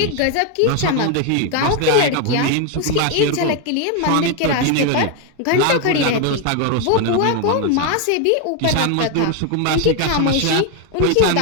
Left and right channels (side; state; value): both; different; correlation 0.01